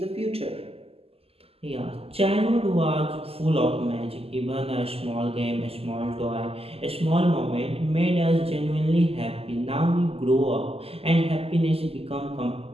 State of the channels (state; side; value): late; left; 0.29 ms